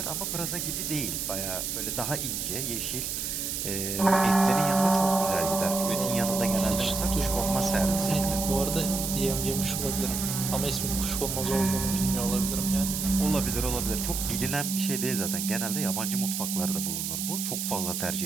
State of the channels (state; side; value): noise; right; hiss, 3 dB below the sound